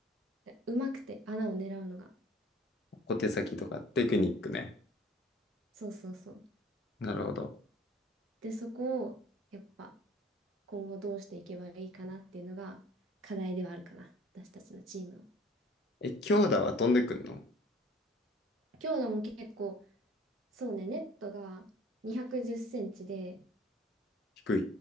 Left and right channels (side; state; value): both; normal; correlation 0.52